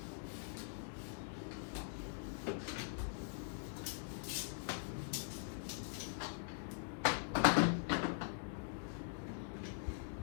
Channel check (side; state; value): right; silent; digital silence